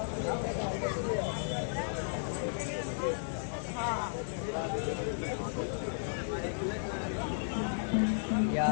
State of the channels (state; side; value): silent; right; digital silence